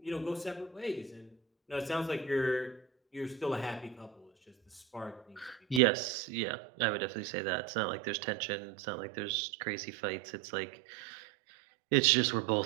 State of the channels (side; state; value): left; drops out; at 5.8 s